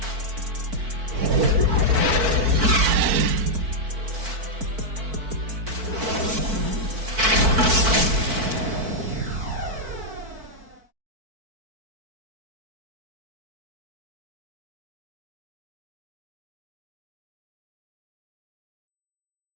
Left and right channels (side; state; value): left; late; 4.5 ms